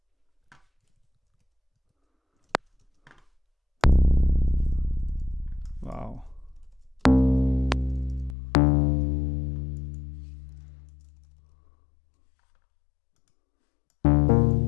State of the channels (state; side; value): drops out; right; at 8.3 s